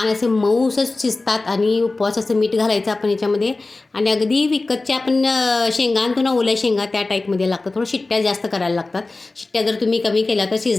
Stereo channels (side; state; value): right; quieter; 3.3 dB